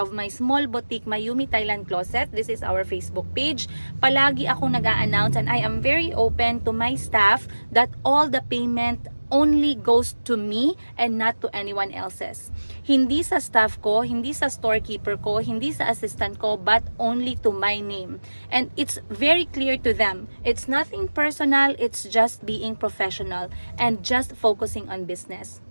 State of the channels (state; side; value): inverted; both; correlation -1.00